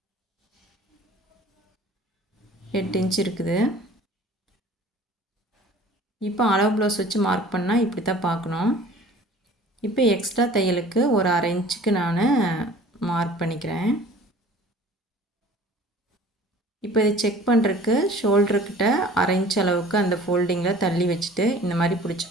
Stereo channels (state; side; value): normal; both; correlation 0.48